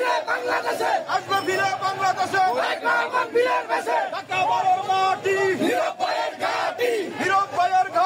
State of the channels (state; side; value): identical; both; correlation 1.00